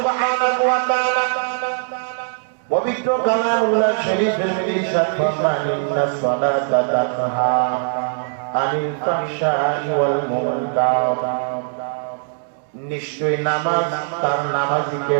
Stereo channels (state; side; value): silent; left; 65 dB below the other